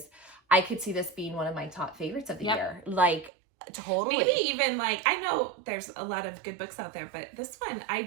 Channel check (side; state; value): left; drops out; at 3.3 s